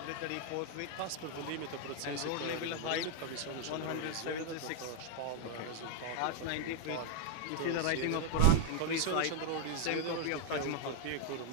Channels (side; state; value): both; different; correlation 0.00